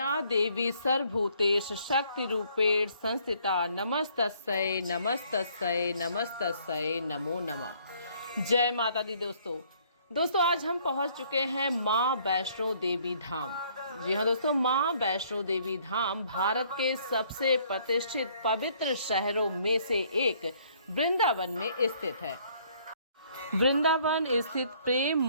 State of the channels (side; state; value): both; inverted; correlation -0.63